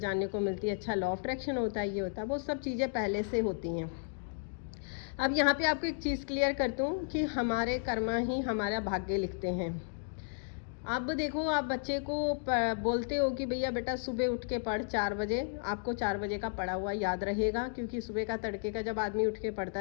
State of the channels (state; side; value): silent; right; digital silence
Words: को मिलती है। अच्छा, लॉ ऑफ अट्रैक्शन होता है, ये होता है, वो सब चीज़ें पहले से होती हैं। अब यहाँ पे आपको एक चीज़ क्लियर करता हूँ कि हमारे कर्मा ही हमारा भाग्य लिखते हैं। अब देखो, आप बच्चे को बोलते हो कि भैया बेटा सुबह उठ के पढ़ 4 बजे, आपको 4 बजे का पढ़ा हुआ याद रहेगा, क्योंकि सुबह का तड़के का जब आदमी उठ के पढ़ता